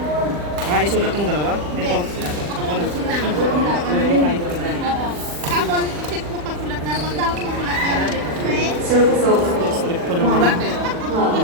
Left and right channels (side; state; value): left; late; 40 ms